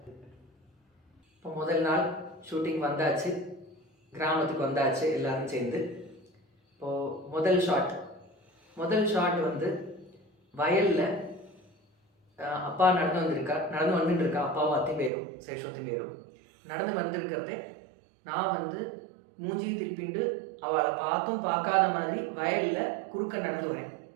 இப்போ முதல் நாள் ஷூட்டிங் வந்தாச்சு, கிராமத்துக்கு வந்தாச்சு எல்லாரும் சேர்ந்து. இப்போது முதல் ஷாட் முதல் ஷாட் வந்து வயலில் அப்பா நடந்து வந்துட்டு இருக்கா, அப்பாவும் அத்தையும் பேரும் சேஷோத்தையும் பேரும் நடந்து வந்திருக்கிறதே நான் வந்து மூஞ்சியை திருப்பிண்டு அவளை பார்த்தும் பார்க்காத மாதிரி வயலில் குறுக்க நடந்து வரேன்.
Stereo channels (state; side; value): drops out; left; at 15.1 s